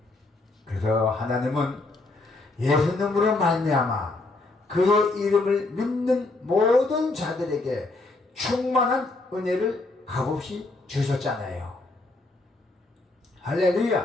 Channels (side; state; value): right; quieter; 3.2 dB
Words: 그래서 하나님은 예수님으로 말미암아 그의 이름을 믿는 모든 자들에게 충만한 은혜를 값없이 주셨잖아요.